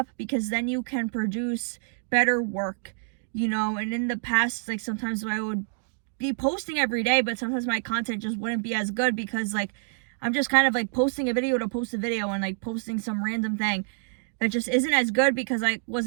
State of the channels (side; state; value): left; silent; digital silence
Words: because then you can produce better work, you know. And in the past, like sometimes I would be posting every day, but sometimes my content just wouldn't be as good because like I'm just kind of like posting a video to post a video and like posting some random thing that just isn't as good because I